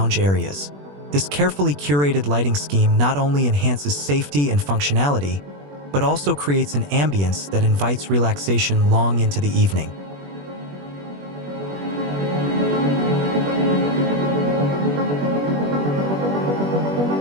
areas. This carefully curated lighting scheme not only enhances safety and functionality, but also creates an ambience that invites relaxation long into the evening.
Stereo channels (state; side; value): late; left; 21 ms